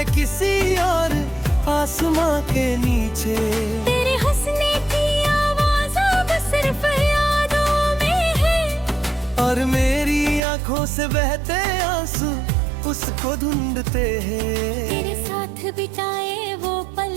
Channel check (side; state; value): left; drops out; at 10.4 s